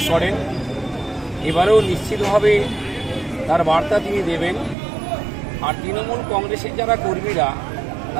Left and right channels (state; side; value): drops out; left; at 4.8 s